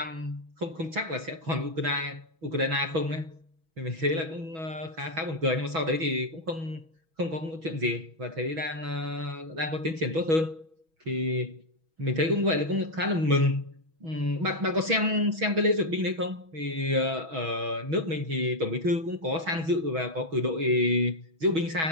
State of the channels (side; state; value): left; late; 6.2 ms